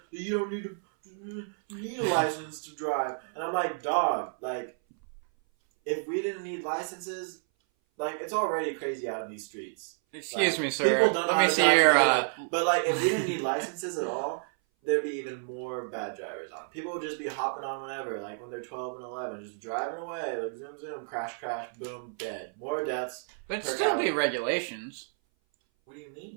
that you don't need a license to drive. And I'm like, dog, like if we didn't need licenses, like it's already crazy out in these streets. Excuse me, sir. People don't know how to drive to begin with. But like if we didn't need licenses at all, there'd be even more bad drivers on. People would just be hopping on whenever, like when they're 12 and 11, just driving away, like zoom, zoom, crash, crash, boom, dead. More deaths. But still be regulations. What do you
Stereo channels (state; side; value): silent; left; 57 dB below the other